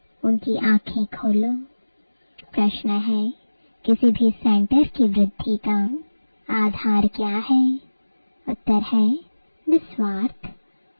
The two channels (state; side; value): inverted; both; correlation -1.00